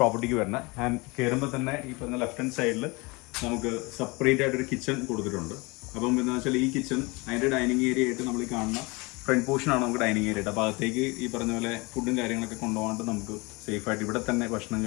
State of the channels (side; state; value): right; quieter; 26.2 dB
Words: വരുന്നത്. ആൻഡ് കയറുമ്പോൾ തന്നെ ഈ പറഞ്ഞ ലെഫ്റ്റ് ഹാൻഡ് സൈഡിൽ നമുക്ക് സെപ്പറേറ്റ് ആയിട്ടൊരു കിച്ചൺ കൊടുത്തിട്ടുണ്ട്. അപ്പം എന്താണെന്ന് വെച്ചാൽ ഈ കിച്ചൺ അതിൻ്റെ ഡൈനിങ് ഏരിയ ആയിട്ട് നമ്മൾ ഈ കാണുന്ന ഫ്രണ്ട് പോർഷനാണ് നമുക്ക് ഡൈനിങ് ഏരിയ ആയിട്ട്. അപ്പോൾ അകത്തേക്ക് ഈ പറഞ്ഞ പോലെ ഫുഡും കാര്യങ്ങളൊക്കെ കൊണ്ടുപോകാണ്ട് നമുക്ക് സേഫായിട്ട് ഇവിടെ തന്നെ ഭക്ഷണം